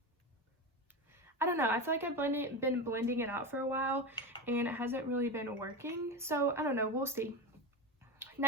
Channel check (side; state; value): both; normal; correlation 0.20